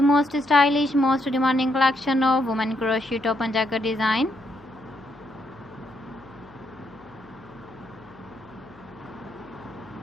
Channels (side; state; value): left; noise; hum, 26 dB below the sound